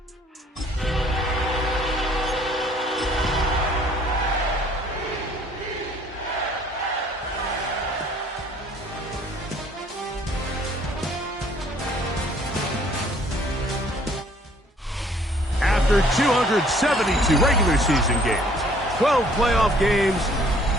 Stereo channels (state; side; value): normal; both; correlation 0.58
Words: After 272 regular season games, 12 playoff games,